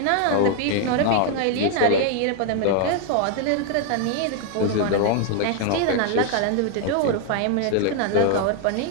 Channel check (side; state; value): both; different; correlation 0.00